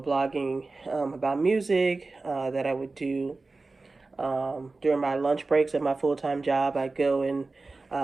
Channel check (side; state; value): left; quieter; 3.6 dB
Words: about music that I would do during my lunch breaks at my full-time job. I'd go and